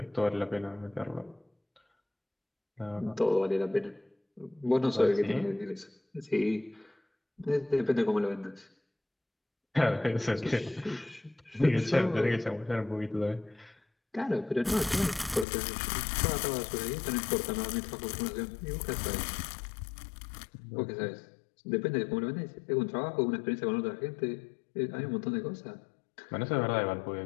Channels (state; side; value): drops out; right; at 15.5 s